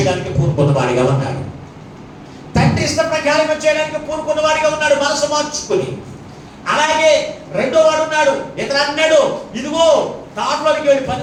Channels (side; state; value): both; identical; correlation 1.00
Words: పూనుకున్న వాడిగా ఉన్నాడు. తండ్రి ఇష్ట ప్రకారంగా చేయడానికి పూనుకున్న వాడిగా ఉన్నాడు మనసు మార్చుకుని. అలాగే రెండో వాడు ఉన్నాడు. ఇతను అన్నాడు ఇదిగో తాటలోకి వెళ్ళి పని